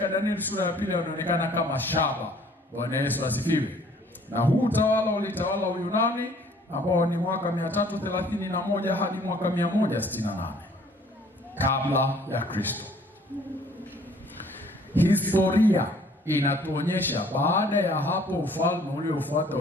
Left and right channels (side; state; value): both; normal; correlation 0.57